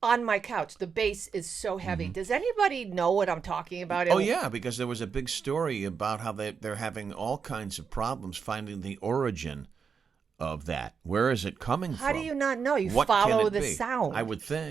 On my couch. The bass is so heavy. Does anybody know what I'm talking about? Oh, yeah, because there was a big story about how they're having all kinds of problems finding the origin of that. Where is it coming from? How do you not know? You What follow can it the be? sound. I would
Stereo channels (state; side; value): quieter; left; 6.1 dB